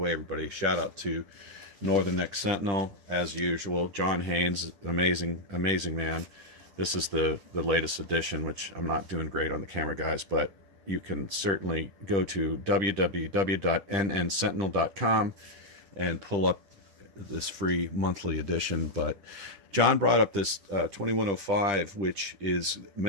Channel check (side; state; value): left; late; 10 ms